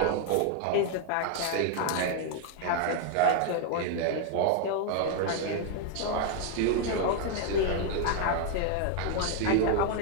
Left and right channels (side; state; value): both; different; correlation 0.00